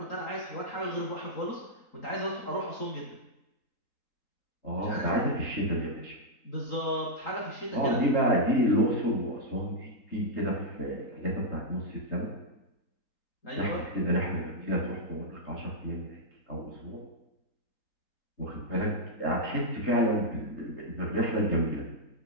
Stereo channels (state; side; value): late; right; 3.8 ms